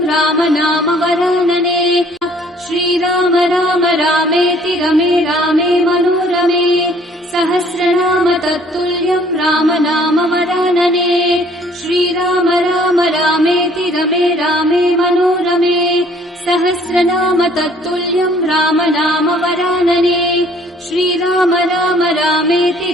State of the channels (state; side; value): normal; both; correlation 0.58